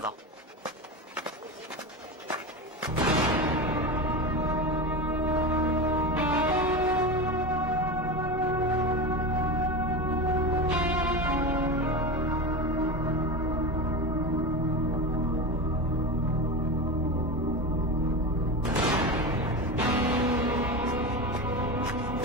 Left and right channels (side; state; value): both; normal; correlation 0.22